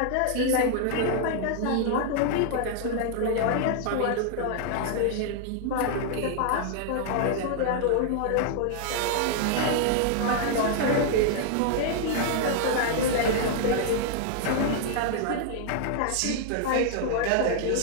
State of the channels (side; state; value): both; different; correlation -0.01